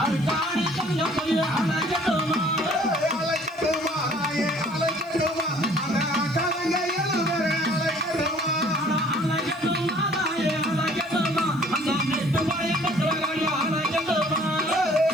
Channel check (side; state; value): left; noise; hiss, 29 dB below the sound